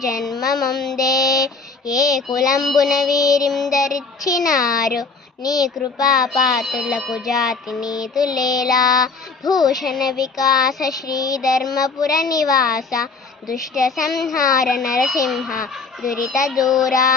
జన్మమొందే, ఏ కులంబున వీరిందరిచ్చినారు, నీ కృపాపాత్రులకు జాతి నీతులేలా, భూషణ వికాస శ్రీధర్మపుర నివాస, దుష్ట సంహార నరసింహ దురిత దూరా.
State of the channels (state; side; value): quieter; right; 4.4 dB